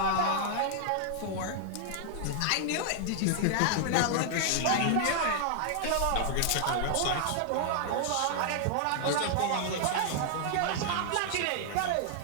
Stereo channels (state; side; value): different; both; correlation 0.00